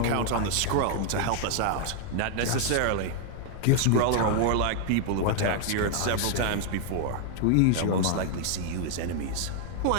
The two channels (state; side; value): different; both; correlation 0.00